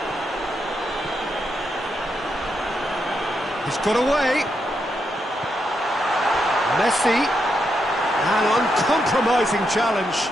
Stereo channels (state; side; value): normal; both; correlation 0.82